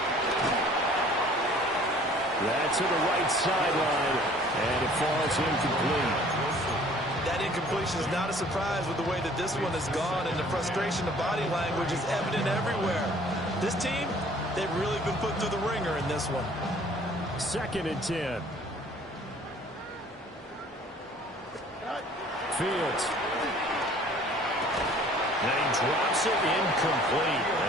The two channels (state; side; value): normal; both; correlation 0.53